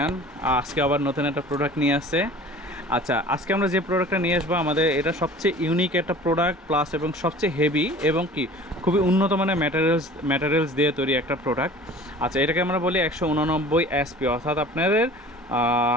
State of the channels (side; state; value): both; normal; correlation 0.44